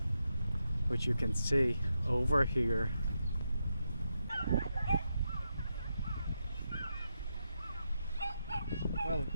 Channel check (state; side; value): inverted; both; correlation -0.85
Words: which you can see over here. Well,